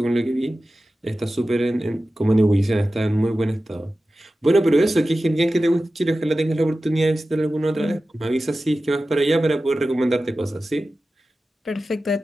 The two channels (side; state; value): both; normal; correlation 0.94